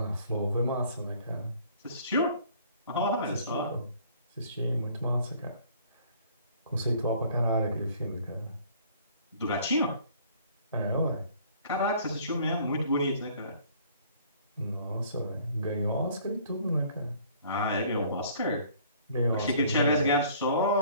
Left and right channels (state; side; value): inverted; both; correlation -0.55